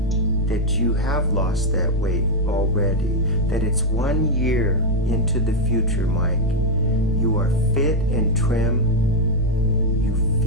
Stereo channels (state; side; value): normal; both; correlation 0.01